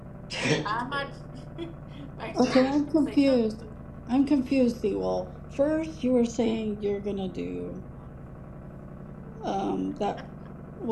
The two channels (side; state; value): both; identical; correlation 1.00